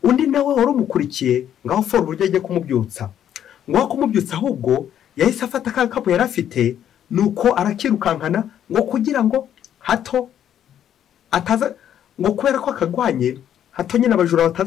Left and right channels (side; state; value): right; quieter; 10.2 dB